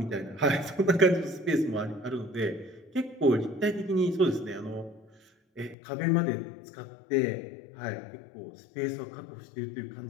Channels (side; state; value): right; drops out; at 5.8 s